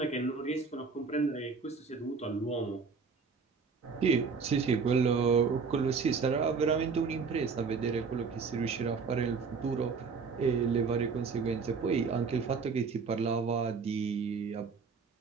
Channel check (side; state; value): left; quieter; 5.1 dB